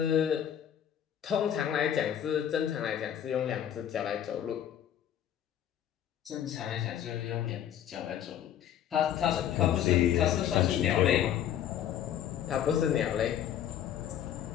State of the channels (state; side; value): quieter; right; 10.2 dB